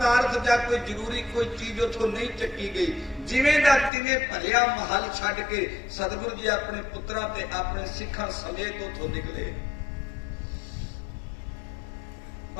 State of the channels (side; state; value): right; drops out; at 3.9 s